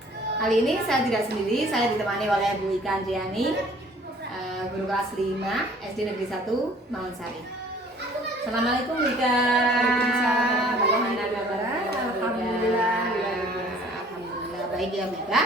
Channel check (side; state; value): both; normal; correlation 0.54